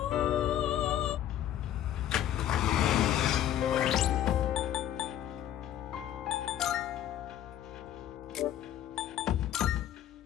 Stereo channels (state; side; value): quieter; right; 11.3 dB